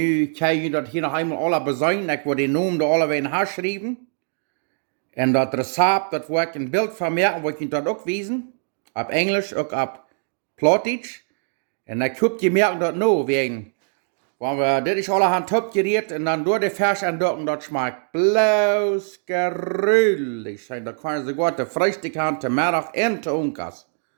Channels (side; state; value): left; silent; digital silence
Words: kan je dat hier nog eenmaal alle bezuinigen. Ik wil die naam er alle weer in haar schrijven. En dat recept, dat wil ik een beeld van maken, wil ik je dat ook wijzen. Op Engels, ook op plautdietsch. En dan kun je merken dat nou, wegen. Want dit is allerhand opgereed en dan door de fesh en dat schmeckt bloos gruwelijk. En dan kan je sogar de Freitag haben, te middag en te onkas.